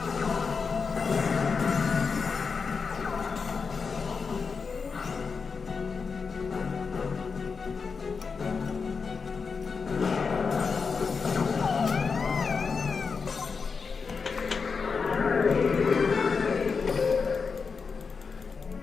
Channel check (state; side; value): quieter; right; 5.2 dB